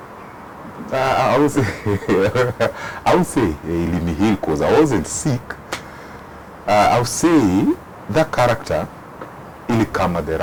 I would say he healed because I wasn't sick. I would say that character ilikama at the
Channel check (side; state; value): both; identical; correlation 1.00